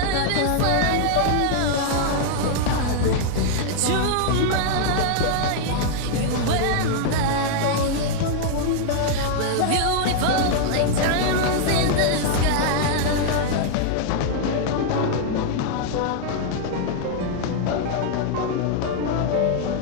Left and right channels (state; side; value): different; both; correlation -0.01